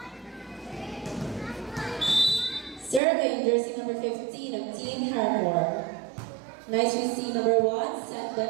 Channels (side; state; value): left; drops out; at 3.0 s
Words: Serving jersey number 15 of Team Hardcore. Nice to see number 1, set by